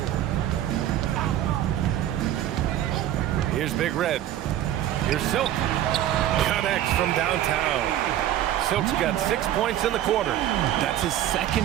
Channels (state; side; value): quieter; left; 12.2 dB